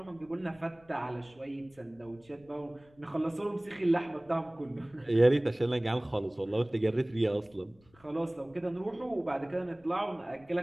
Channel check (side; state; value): left; noise; rumble, 29 dB below the sound